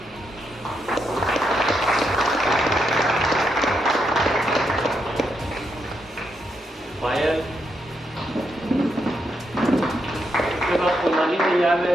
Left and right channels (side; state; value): both; normal; correlation 0.81